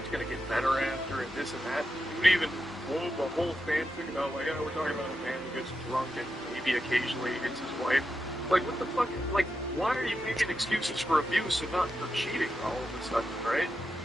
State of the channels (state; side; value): normal; both; correlation 0.88